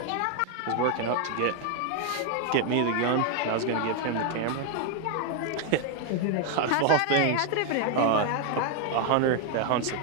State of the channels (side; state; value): both; different; correlation 0.00